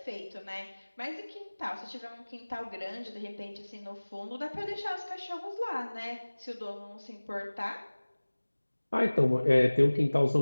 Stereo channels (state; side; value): inverted; both; correlation -1.00